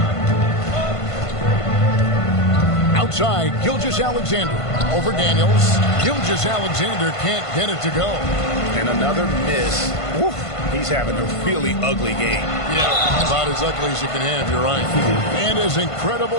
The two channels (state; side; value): late; right; 1.5 ms